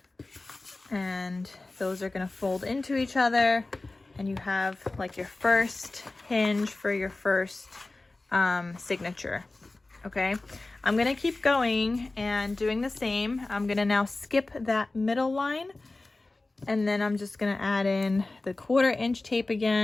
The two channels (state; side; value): quieter; right; 3.1 dB